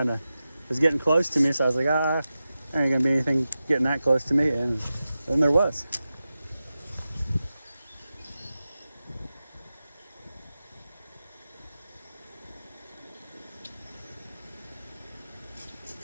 of, it was getting close to me, so I was like, there ain't gonna be anything getting that close to me, and then there was.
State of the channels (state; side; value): inverted; both; correlation -0.93